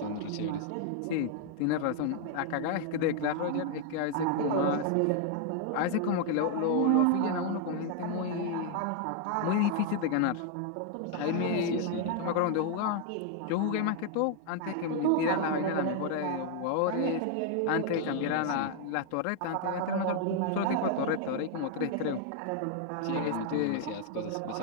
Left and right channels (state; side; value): different; both; correlation 0.00